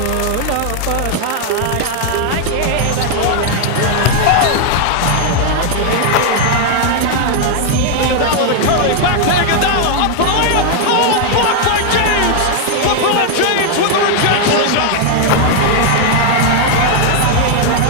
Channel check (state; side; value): different; both; correlation 0.00